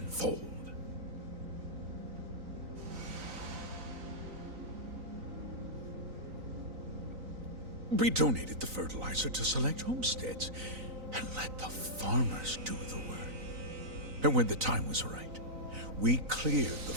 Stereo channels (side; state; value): left; late; 3.9 ms